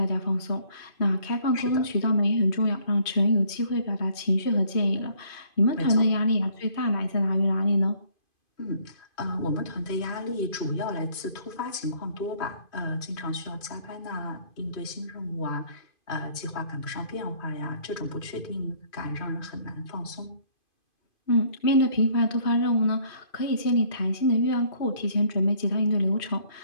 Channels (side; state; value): right; late; 2.5 ms